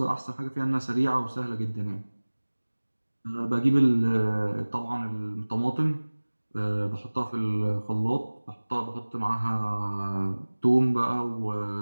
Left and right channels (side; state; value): both; inverted; correlation -1.00